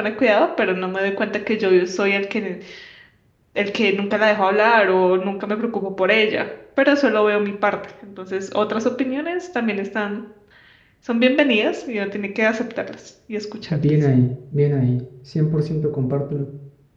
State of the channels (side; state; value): both; identical; correlation 1.00